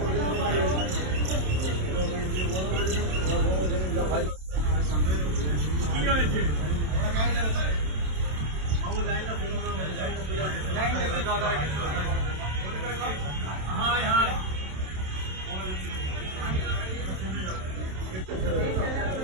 কি হয়েছে? হাই হাই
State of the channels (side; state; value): left; late; 27 ms